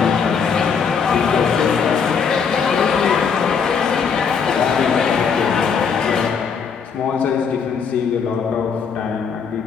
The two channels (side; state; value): right; quieter; 6.2 dB